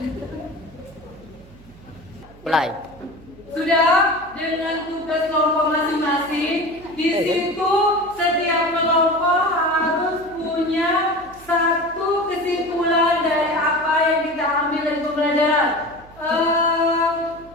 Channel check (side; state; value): right; noise; hum, 23 dB below the sound